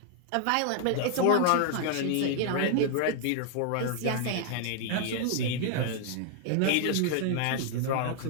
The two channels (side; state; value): both; different; correlation -0.01